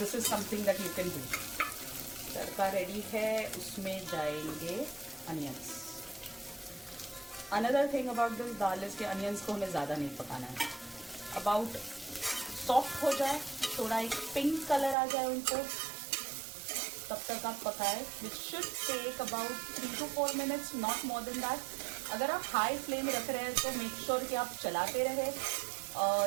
is something that you can do. Tadka ready है, उसमें जाएंगे onions. Another thing about this dal is के अनियंस को हमें ज़्यादा नहीं पकाना है। अबाउट सॉफ्ट हो जाए, थोड़ा एक पिंक कलर आ जाए उनको, तब तक आप पकाएं। Which should take about 3 to 4 minutes, not more than that. अगर आप हाई फ्लेम रख रहे हैं तो मेक श्योर कि आप चलाते रहे,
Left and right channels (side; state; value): left; drops out; at 15.0 s